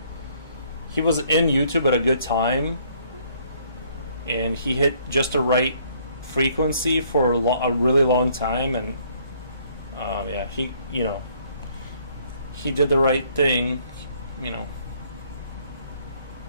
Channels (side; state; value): both; inverted; correlation -0.64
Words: he was in YouTube at a good time, and he hit just the right frequency for a really long time, and he did the right thing,